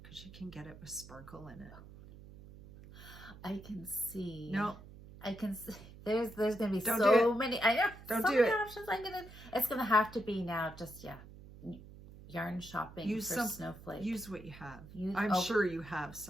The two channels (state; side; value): noise; right; hum, 17 dB below the sound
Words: because you can get it with sparkle in it. I can see. No. I can see. There's gonna be Don't so many. I know. Don't so do many it. options. It's gonna have to be now. Just yarn shopping Use for snowflakes. Use what you have. I'm sure you have